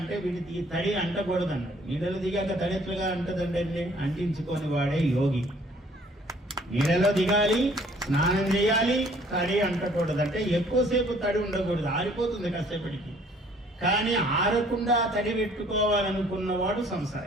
వీడికి ఈ తడి అంటకూడదు అన్నాడు. నీళ్ళలో దిగాక తడి ఎట్లుగా అంటదంటే అంటించుకొని వాడే యోగి. నీళ్ళలో దిగాలి, స్నానం చేయాలి, తడి అంటకూడదు. అంటే ఎక్కువసేపు తడి ఉండకూడదు, ఆరిపోతుంది కాసేపటికి. కానీ ఆరకుండా తడి పెట్టుకోవాలనుకున్నవాడు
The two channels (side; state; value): both; normal; correlation 0.58